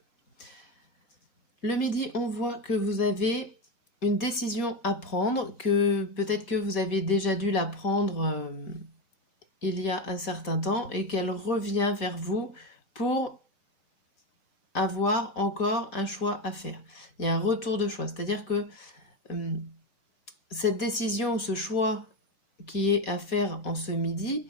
Le midi, on voit que vous avez une décision à prendre, que peut-être que vous avez déjà dû la prendre il y a un certain temps et qu'elle revient vers vous pour avoir encore un choix à faire. Il y a un retour de choix, c'est-à-dire que cette décision, ce choix qui est à faire en ce midi,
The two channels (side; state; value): right; late; 4.2 ms